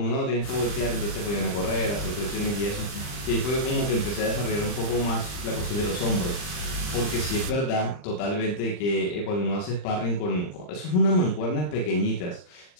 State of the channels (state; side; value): late; right; 39 ms